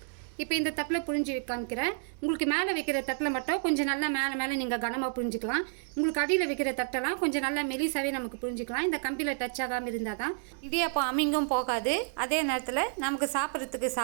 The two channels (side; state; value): left; silent; digital silence